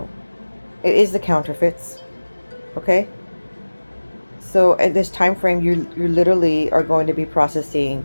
It is the counterfeits. Okay? So at this time frame, you literally are going to be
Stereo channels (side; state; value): both; inverted; correlation -1.00